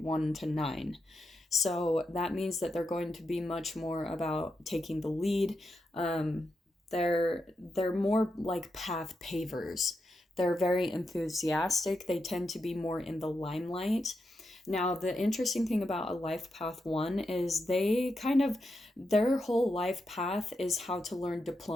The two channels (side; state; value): both; normal; correlation 0.85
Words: to 9. So that means that they're going to be much more about taking the lead. They're more like path pavers. They're very enthusiastic. They tend to be more in the limelight. Now, the interesting thing about a life path 1 is their whole life path is how to learn